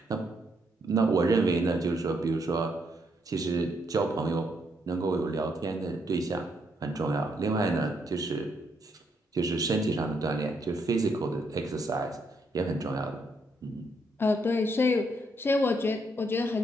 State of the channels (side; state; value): both; normal; correlation 0.75